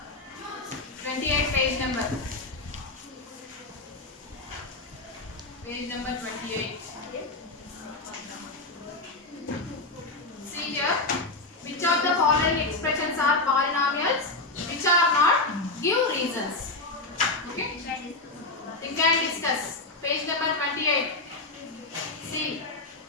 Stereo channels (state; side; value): quieter; right; 3.1 dB